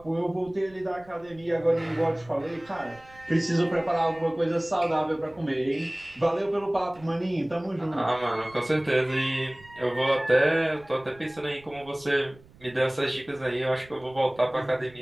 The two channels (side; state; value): right; noise; rumble, 25 dB below the sound